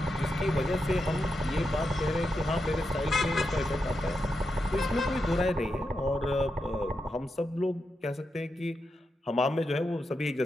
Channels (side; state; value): both; normal; correlation 0.86